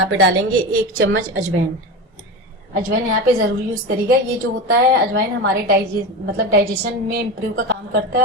पे डालेंगे 1 चम्मच अजवाइन। अजवाइन यहाँ पे जरूर यूज करिएगा। ये जो होता है अजवाइन हमारे डाइजेशन में इम्प्रूव का काम करता है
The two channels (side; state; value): both; normal; correlation 0.24